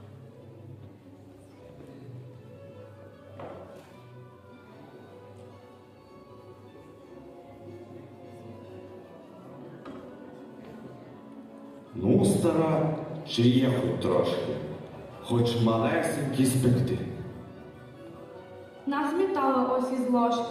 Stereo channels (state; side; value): identical; both; correlation 1.00